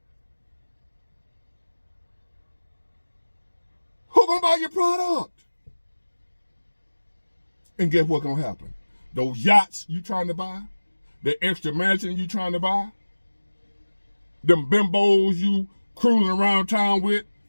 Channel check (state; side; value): inverted; both; correlation -1.00